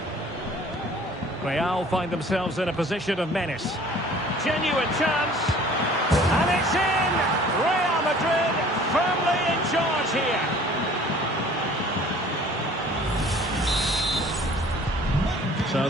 Real find themselves in a position of menace. Genuine chance. And it's in! Real Madrid firmly in charge here. So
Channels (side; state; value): both; normal; correlation 0.51